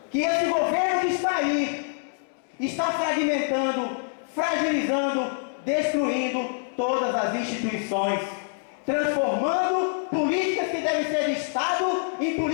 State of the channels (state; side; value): silent; right; digital silence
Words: Que esse governo que está aí está fragmentando, fragilizando, destruindo todas as instituições, transformando políticas que devem ser de Estado em